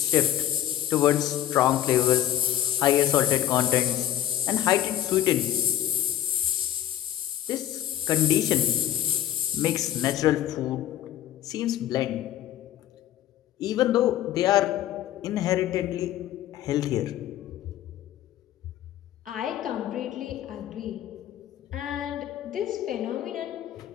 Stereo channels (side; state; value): right; quieter; 12.1 dB